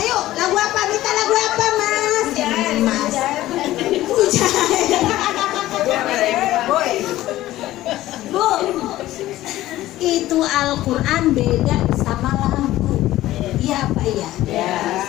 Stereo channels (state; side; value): quieter; right; 15.4 dB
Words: lagu apa? Minta lagu apa Mas? Mas. Bu, itu Al-Quran beda sama lagu. Iya Pak ya?